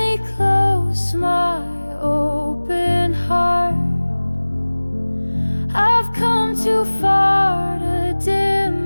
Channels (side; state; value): both; inverted; correlation -1.00